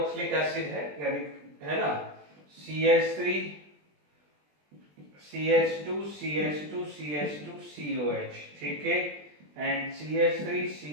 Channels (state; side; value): late; left; 20 ms